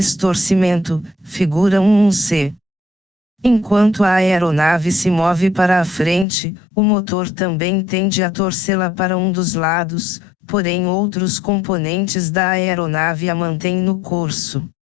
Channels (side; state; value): right; drops out; at 6.2 s